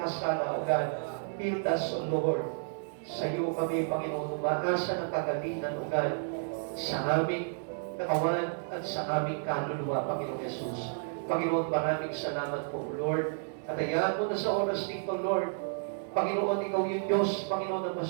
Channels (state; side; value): silent; left; digital silence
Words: O God. Heal us, O Lord. Sa iyo kami, Panginoon, umaasa ng kagalingan, O God, sa aming katawan at sa aming kaluluwa, Panginoon Jesus. Panginoon, maraming salamat po, Lord. At hayaan mo na sa oras nito, Lord. Panginoon, ikaw yung Diyos, Panginoon, na